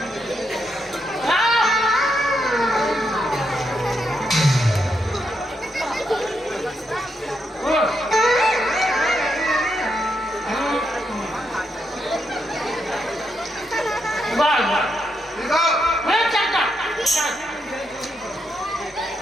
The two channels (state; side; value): normal; both; correlation 0.81